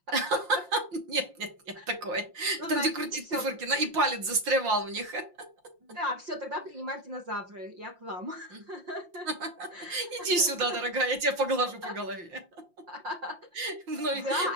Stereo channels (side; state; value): left; late; 5.7 ms